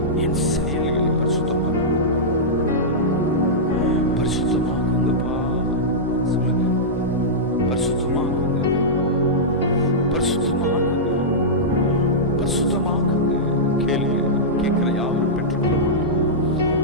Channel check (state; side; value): noise; right; hum, 16 dB below the sound